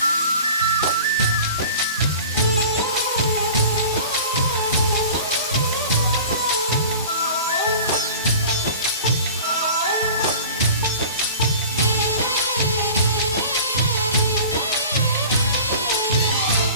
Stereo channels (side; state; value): both; inverted; correlation -0.40